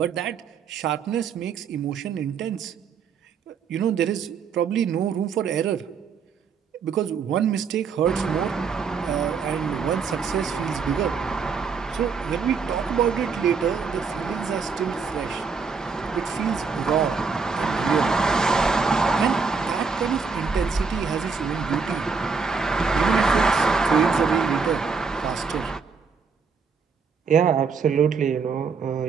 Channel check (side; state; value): left; quieter; 5.4 dB